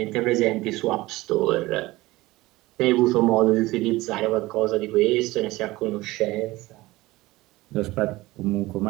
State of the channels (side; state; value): left; quieter; 19.4 dB